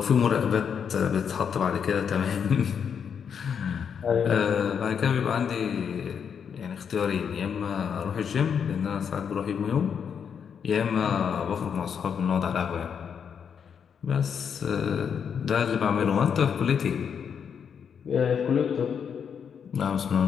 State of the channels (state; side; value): quieter; right; 7.3 dB